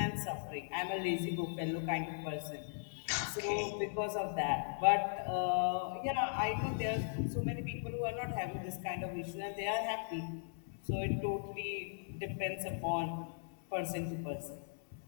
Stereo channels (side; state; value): right; silent; 52 dB below the other